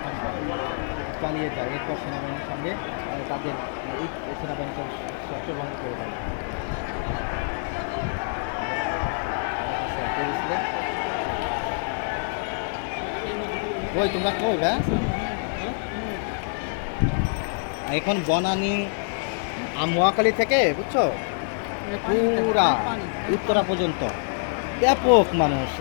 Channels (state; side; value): silent; right; digital silence